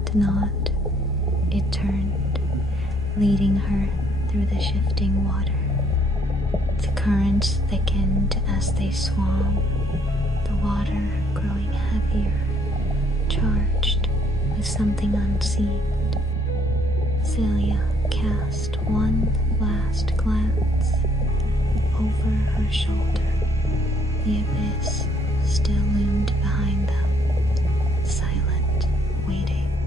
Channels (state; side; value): normal; both; correlation 0.66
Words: nod, it turned, leading her through the shifting water. The currents thickened as they swam, the water growing heavier, charged with something unseen. Celia cast one last glance over her shoulder. The abyss still loomed behind them, silent, waiting.